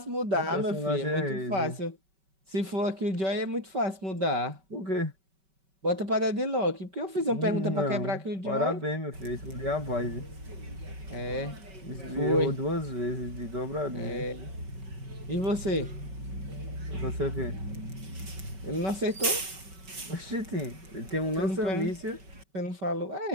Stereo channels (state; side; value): late; left; 5.2 ms